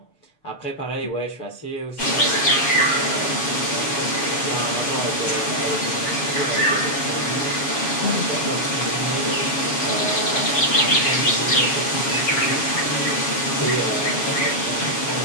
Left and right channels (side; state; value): right; late; 7.3 ms